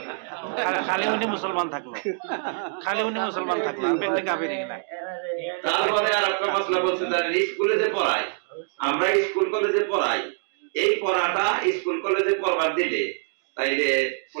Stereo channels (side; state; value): left; silent; 62 dB below the other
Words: খালি উনি মুসলমান থাকলো, ব্যক্তি কাফের না। তারপরে আর একটা মশলা বলছে জানেন, স্কুলে যে পড়াই, আমরা স্কুল কলেজে পড়াই, এই পড়াটা স্কুল কলেজে পড়বার দিলে তাইলে